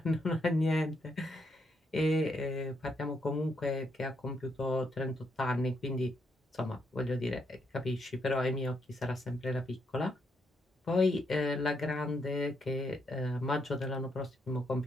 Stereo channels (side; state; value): both; normal; correlation 0.77